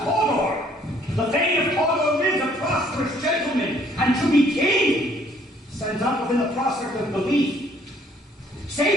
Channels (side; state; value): both; normal; correlation 0.62